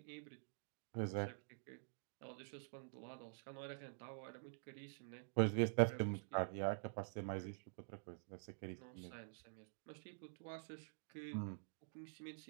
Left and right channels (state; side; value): silent; left; digital silence